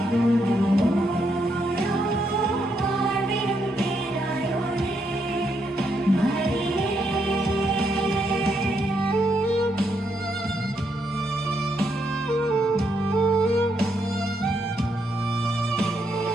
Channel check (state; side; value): normal; both; correlation 0.77